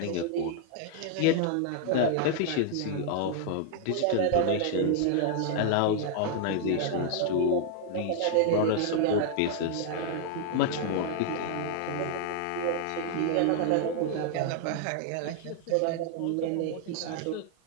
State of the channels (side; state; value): both; different; correlation 0.00